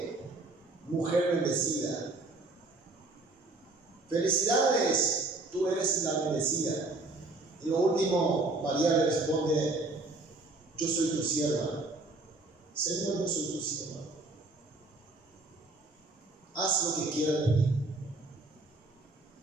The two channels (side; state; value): left; quieter; 3.1 dB